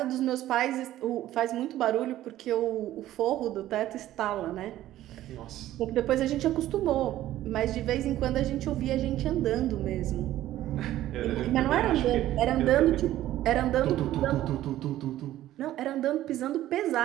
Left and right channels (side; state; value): left; quieter; 13.9 dB